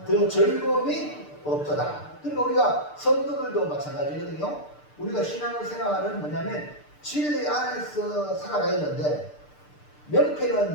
더 즐거움이 없도다. 그러니까 우리가 성도들도 마찬가지거든요. 우리가 신앙생활은 뭐냐면 진리 안에서 살아가야 되는데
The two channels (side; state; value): right; late; 6.7 ms